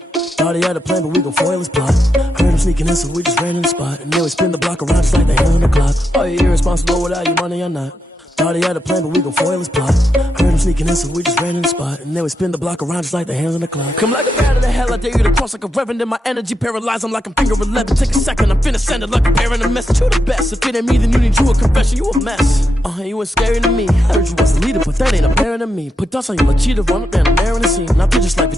Thought he had a plan, but we gon' foil his plot. Heard him sneaking in, so we just ran in the spot. And then we spin the block around just like the hands on the clock. Are you irresponsible without your money or not? Thought he had a plan, but we gon' foil his plot. Heard him sneaking in, so we just ran in the spot. And then we spin the block around just like the hands on the clock. Come like a bat of the hell, I dare you to cross like a reverend. And my energy paralyzed, I'm like I'm finger 11. Take a second, I'm finna send it like a parent a message. You the best, if it ain't me, then you need you a confession. You a mess, you ain't scary to me. I heard you was the leader, but that ain't apparent to me. Put dust on you like cheetah, run up down the air in the scene. And I feel just like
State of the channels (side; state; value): both; normal; correlation 0.84